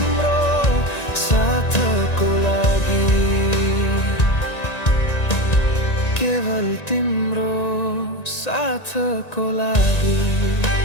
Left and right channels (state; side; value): late; right; 1.9 ms